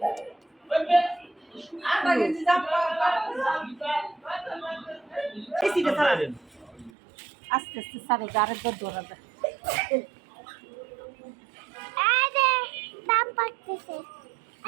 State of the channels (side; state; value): left; drops out; at 6.9 s